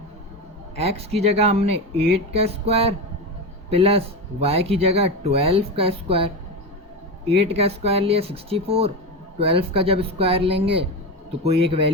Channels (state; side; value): normal; both; correlation 0.19